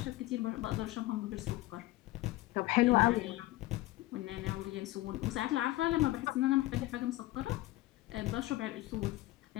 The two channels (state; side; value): quieter; right; 18.1 dB